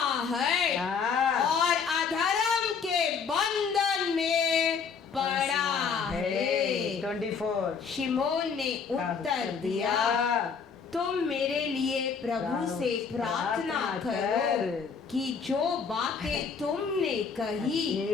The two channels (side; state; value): right; quieter; 5.9 dB